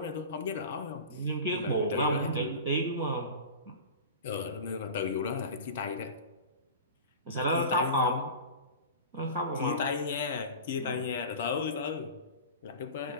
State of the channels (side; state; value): both; inverted; correlation -0.33